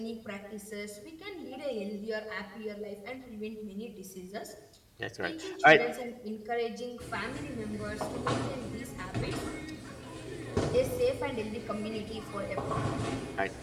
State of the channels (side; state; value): both; identical; correlation 1.00